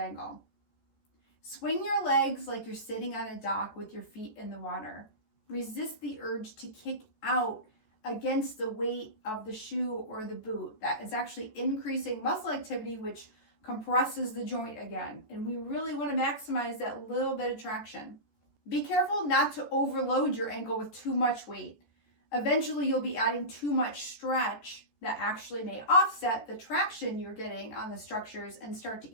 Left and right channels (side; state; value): right; late; 14 ms